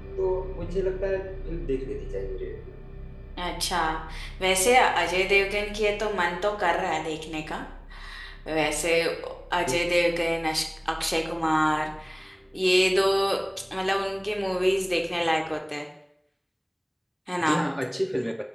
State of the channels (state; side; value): identical; both; correlation 1.00